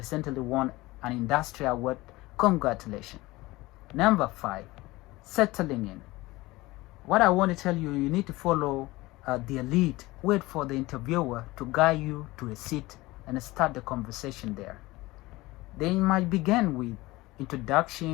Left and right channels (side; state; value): right; quieter; 20.0 dB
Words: won an industry award. Congratulations. Number 5, settling in. What I want to tell you, you need to follow the lead. Wait for the interviewer to guide you to a seat and start the conversation there. They might begin with